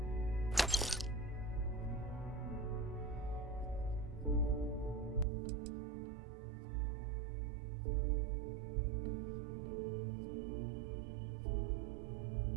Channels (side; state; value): left; drops out; at 5.2 s